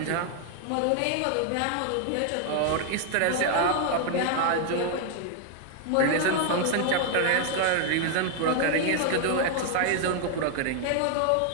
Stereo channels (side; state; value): both; different; correlation 0.00